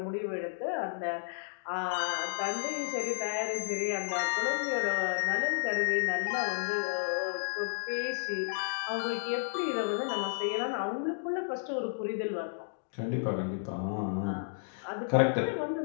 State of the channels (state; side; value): silent; right; digital silence